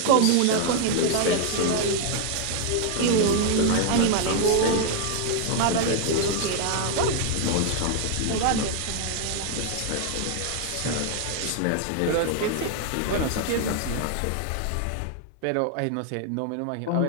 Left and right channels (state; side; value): different; both; correlation 0.00